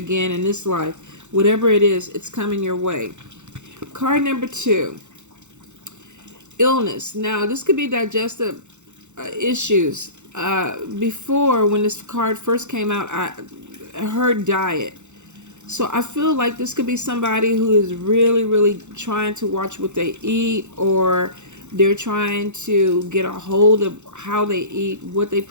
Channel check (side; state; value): left; late; 0.83 ms